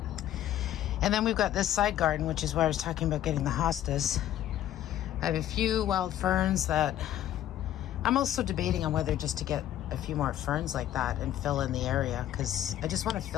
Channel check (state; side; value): quieter; right; 12.1 dB